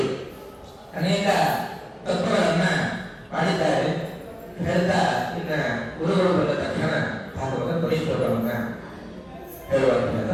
ಅನೇಕ ತತ್ವಗಳನ್ನ ಮಾಡಿದ್ದಾರೆ. ಹೇಳ್ತಾ ಇನ್ನ ಗುರುಗಳು ಬಂದ ತಕ್ಷಣ ಭಾಗವತ ಪರಿಶ್ರಮವನ್ನ ಹೇಳುವಂತ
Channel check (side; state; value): both; identical; correlation 1.00